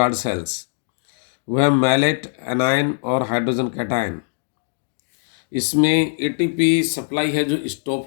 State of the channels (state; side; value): silent; right; digital silence